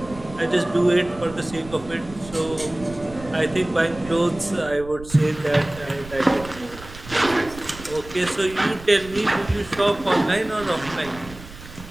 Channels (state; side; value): noise; right; rumble, 16 dB below the sound